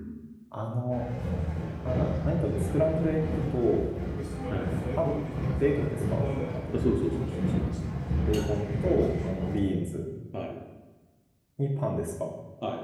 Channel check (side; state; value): both; identical; correlation 1.00